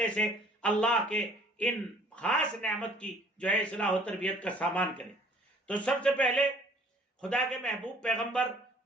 سے اللہ کے ان خاص نعمت کی جو ہے اصلاح و تربیت کا سامان کریں۔ تو سب سے پہلے خدا کے محبوب پیغمبر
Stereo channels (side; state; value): both; normal; correlation 0.55